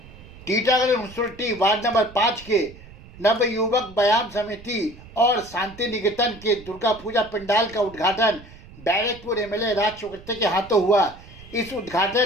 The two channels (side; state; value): right; noise; rumble, 19 dB below the sound